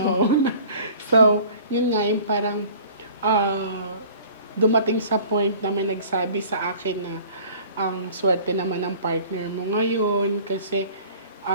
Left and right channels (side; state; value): both; inverted; correlation -0.47